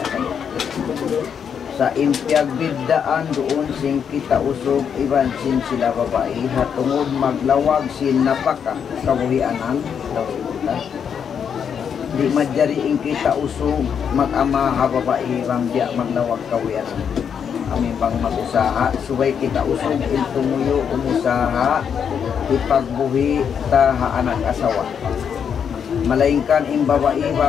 sa impyag biddaan doon sing kita usog iban sin sila babae hatungod maglawag sin napaka kabuhianan di madjariing kita usog mag-ama ha babae bang diya maglawag kawianan amin pang mag-usaha subay kita usog intumuyo umusaha ipagbuhi ta ha anak asawa malaingkan im babae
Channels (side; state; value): right; quieter; 7.5 dB